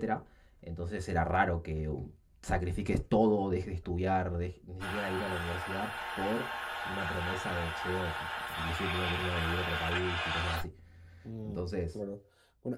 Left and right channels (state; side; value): identical; both; correlation 1.00